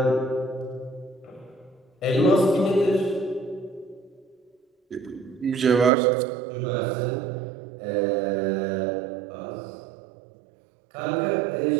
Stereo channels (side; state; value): left; drops out; at 5.9 s